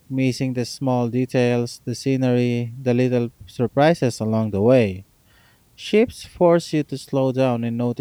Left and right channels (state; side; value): identical; both; correlation 1.00